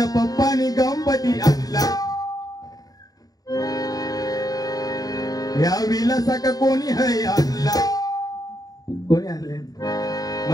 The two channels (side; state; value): right; late; 0.18 ms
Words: पप्पानी गणपती आणला या विलासाका कोणी है आणला कोणी आणले